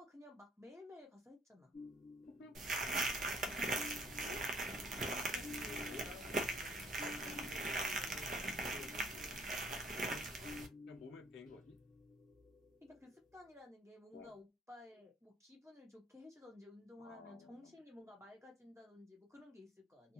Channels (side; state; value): both; normal; correlation 0.61